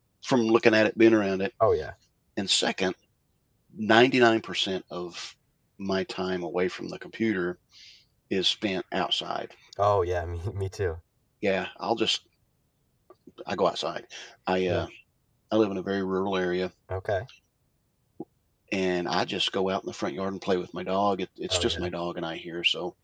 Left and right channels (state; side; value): identical; both; correlation 1.00